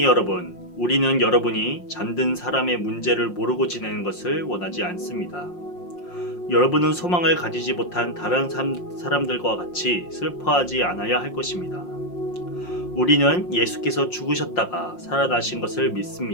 여러분, 우리는 여러분이 잠든 사람의 문제를 모르고 지내는 것을 원하지 않습니다. 여러분은 소망을 가지지 못한 다른 사람들과 같이 슬퍼하지 않아야 할 것입니다. 우리는 예수께서 죽으셨다가 살아나신 것을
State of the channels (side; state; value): right; late; 5.6 ms